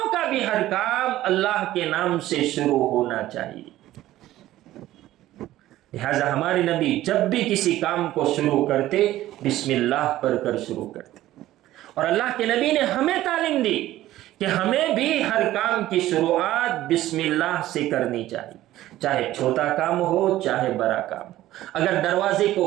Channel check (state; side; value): quieter; left; 14.8 dB